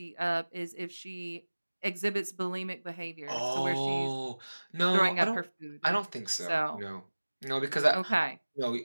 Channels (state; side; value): inverted; both; correlation -1.00